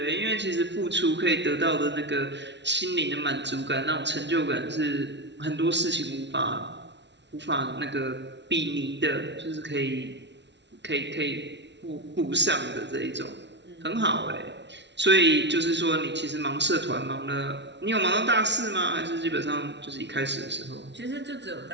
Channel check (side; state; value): left; late; 0.51 ms